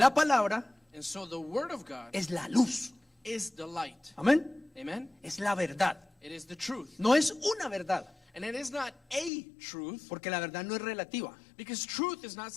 palabra And so the word of God es la luz. is the light. Amén. Amen? Es la verdad. It is the truth. No es una verdad, And it is not a truth, porque la verdad no es relativa. because truth is not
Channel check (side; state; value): right; drops out; at 9.3 s